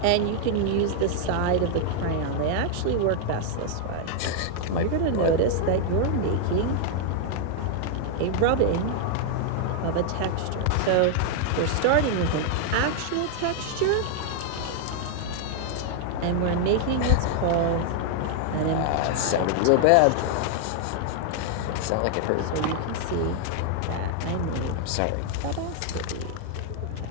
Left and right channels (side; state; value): both; different; correlation 0.00